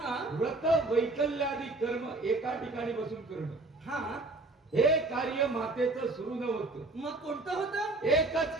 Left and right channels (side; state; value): left; quieter; 3.0 dB